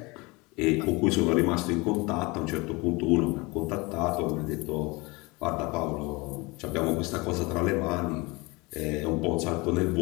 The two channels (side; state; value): right; quieter; 25.2 dB